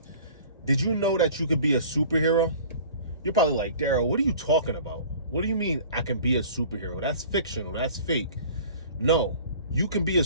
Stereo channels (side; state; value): both; inverted; correlation -0.46